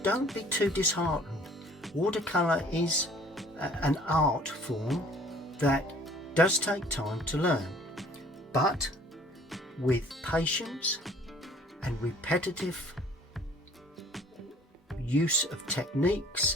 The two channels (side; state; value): both; normal; correlation 0.54